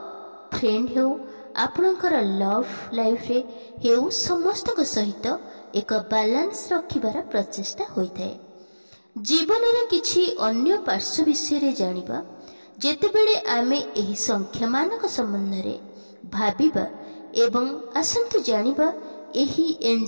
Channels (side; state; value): both; inverted; correlation -1.00